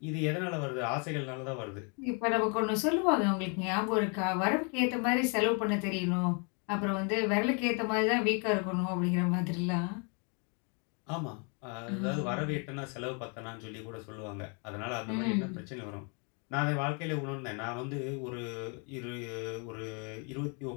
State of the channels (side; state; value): right; quieter; 36.6 dB